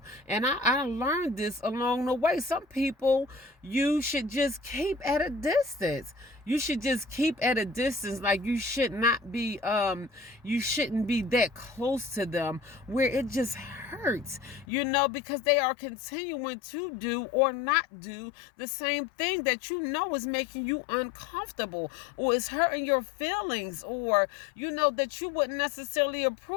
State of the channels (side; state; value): right; drops out; at 14.7 s